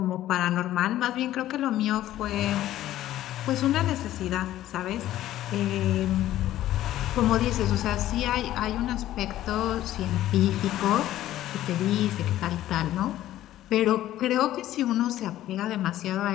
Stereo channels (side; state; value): right; quieter; 13.7 dB